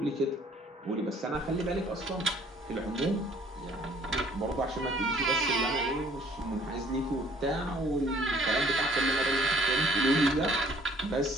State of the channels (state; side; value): normal; both; correlation 0.58